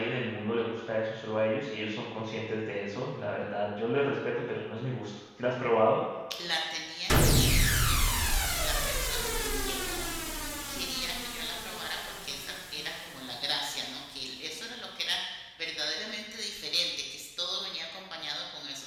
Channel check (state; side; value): identical; both; correlation 1.00